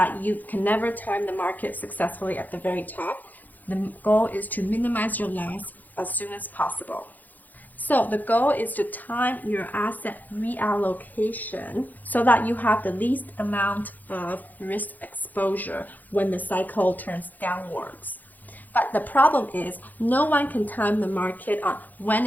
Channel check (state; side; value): late; right; 0.083 ms